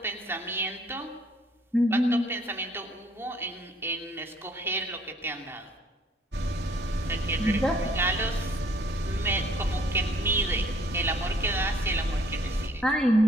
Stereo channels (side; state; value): both; normal; correlation 0.61